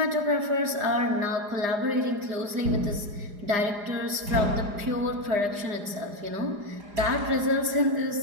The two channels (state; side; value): late; left; 4.9 ms